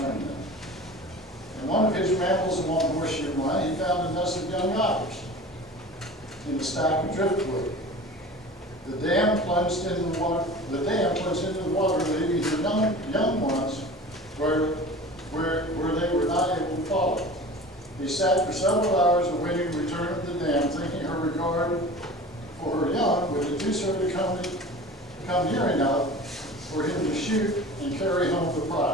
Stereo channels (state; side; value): normal; both; correlation 0.38